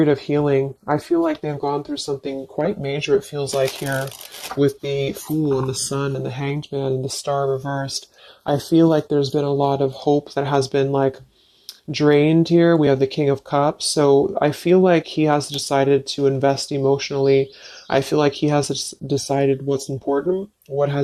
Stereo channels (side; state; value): both; identical; correlation 1.00